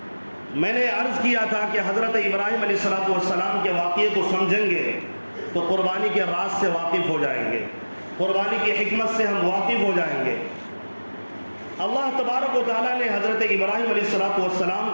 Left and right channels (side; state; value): both; inverted; correlation -1.00